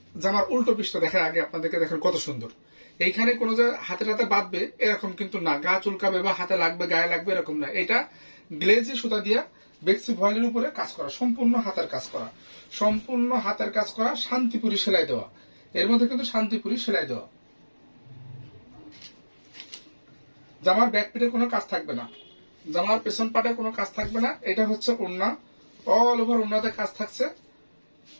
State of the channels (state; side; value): inverted; both; correlation -1.00